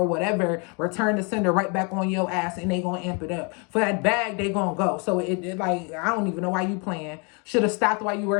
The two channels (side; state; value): right; quieter; 33.9 dB